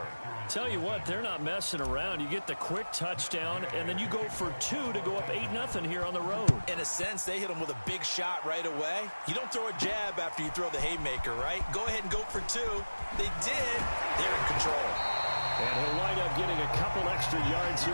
Tell you what, they're not messing around. You get the quick touchdown, and then you go for 2 to go up 8-0 here on the road. In a sense, they hit him with a big shot right away. You don't throw a jab after you throw the haymaker, right? Go ahead and go for 2. They did. They're in control. And he'll wind up getting a couple extra yards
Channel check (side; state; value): both; inverted; correlation -1.00